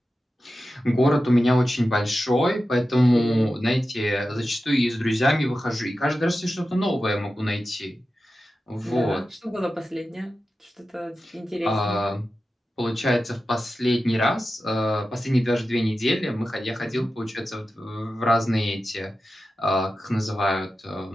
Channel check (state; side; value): normal; both; correlation 0.92